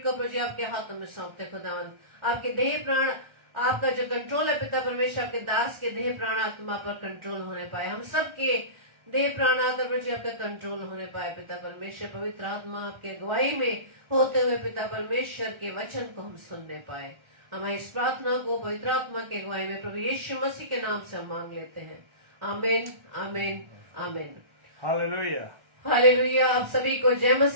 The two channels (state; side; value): late; left; 1.4 ms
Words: को प्रभु जी आपके हाथों में सौंपते खुदावंद। आपके देह प्राण, आपका जो कंट्रोल है पिता परमेश्वर, आपके दास के देह प्राण आत्मा पर कंट्रोल होने पाए। हम सबके देह प्राण आत्मा प्रभु जी आपका कंट्रोल होने पाए पिता परमेश्वर। पवित्र आत्मा आपके अगुवाई में होते हुए पिता परमेश्वर के वचन को हम सुनने पाए। हमारी इस प्रार्थना को पवित्र आत्मा के अगुवाई में प्रभु यीशु मसीह के नाम से हम मांग लेते हैं। आमीन, आमीन, आमीन। Hallelujah, hallelujah. आप सभी को जय